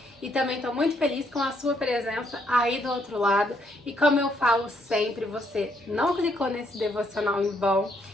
e também tô muito feliz com a sua presença aí do outro lado. E como eu falo sempre, você não clicou nesse devocional em vão.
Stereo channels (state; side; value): normal; both; correlation 0.72